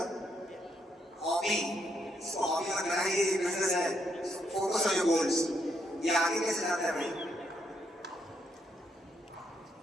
हॉबी। इसको हॉबी मत बनाइए, ये बिजनेस है। Focus on your goals. ये आगे कैसे जाता है भाई?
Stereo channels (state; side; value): normal; both; correlation 0.76